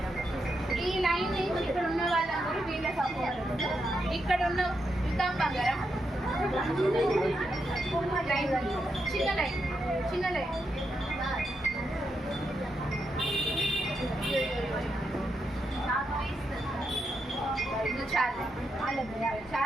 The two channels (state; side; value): normal; both; correlation 0.83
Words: ఈ లైన్ నుంచి ఇక్కడ ఉన్న వాళ్ళందరూ వీళ్ళ సపోర్ట్, ఇక్కడ ఉన్న వికాం బంగారం లైన్, చిన్న లైన్ చిన్న లైన్. చాలా